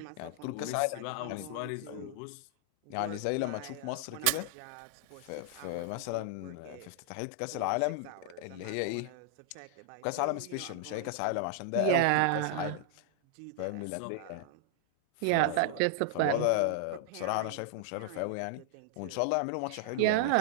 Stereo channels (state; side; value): different; both; correlation 0.00